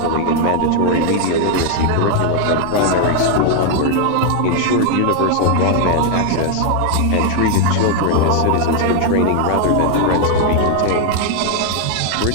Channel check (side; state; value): both; different; correlation 0.00